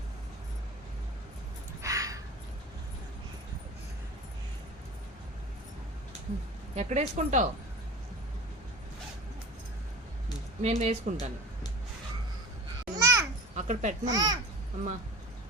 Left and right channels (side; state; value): both; normal; correlation 0.36